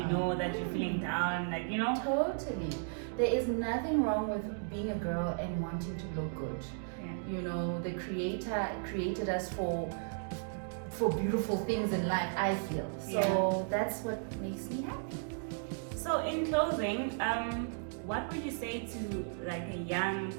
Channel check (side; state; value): left; silent; digital silence